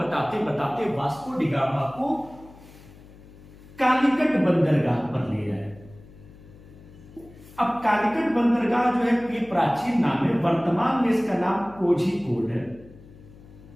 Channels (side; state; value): left; noise; hum, 21 dB below the sound